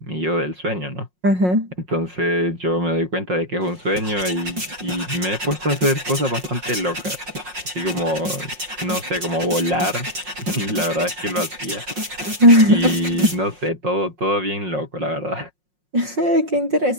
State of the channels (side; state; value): left; late; 5.5 ms